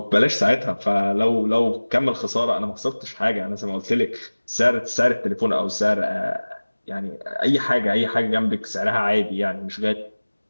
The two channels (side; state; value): both; inverted; correlation -1.00